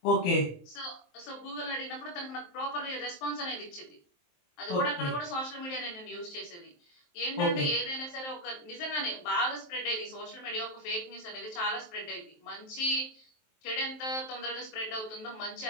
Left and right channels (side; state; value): right; late; 23 ms